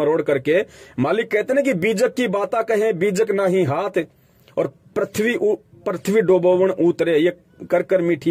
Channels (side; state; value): both; identical; correlation 1.00